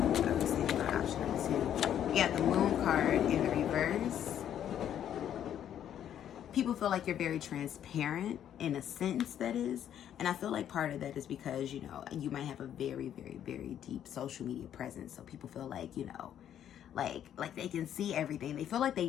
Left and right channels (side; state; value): right; quieter; 10.1 dB